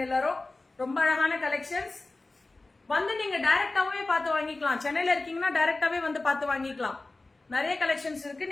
எல்லாரும். ரொம்ப அழகான கலெக்ஷன்ஸ். வந்து நீங்க டைரக்டாவே பார்த்து வாங்கிக்கலாம். சென்னையில இருக்கீங்கன்னா டைரக்டாவே வந்து பார்த்து வாங்கிக்கலாம். நிறைய கலெக்ஷன்ஸ் இருக்கு,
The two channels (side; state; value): right; quieter; 3.2 dB